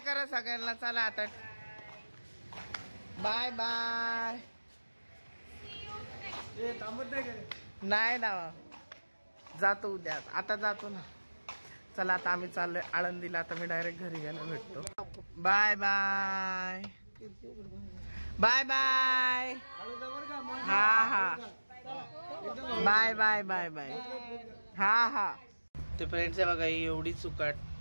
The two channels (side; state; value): both; inverted; correlation -1.00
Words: सगळ्यांना. चला आता बाय बाय. नाही ना जातो उद्या. आता जातो ना. चला आता आम्ही चाललोय आळंदीला. आता मी डायरेक्ट घरी गेलो भेटतो. Bye bye. Bye bye. हा बाय बाय बाय बाय. हा ते फ्रेंड्स आहे बघा. ही एवढी